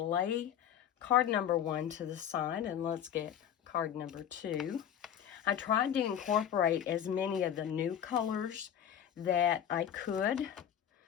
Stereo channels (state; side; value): quieter; right; 9.6 dB